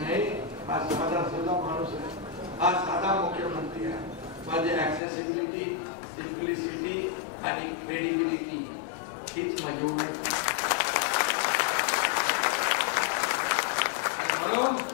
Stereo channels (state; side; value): drops out; right; at 5.0 s